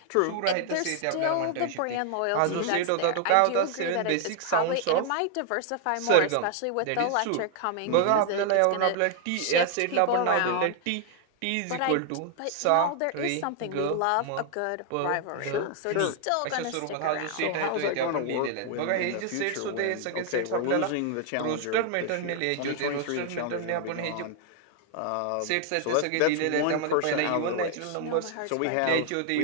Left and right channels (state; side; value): different; both; correlation 0.00